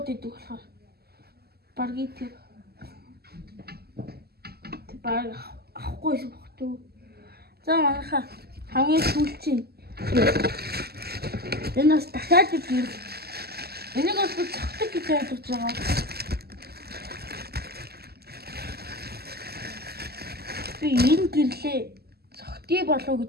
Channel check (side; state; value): left; late; 0.46 ms